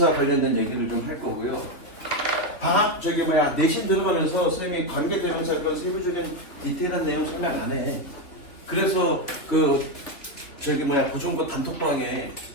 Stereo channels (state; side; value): late; right; 2.9 ms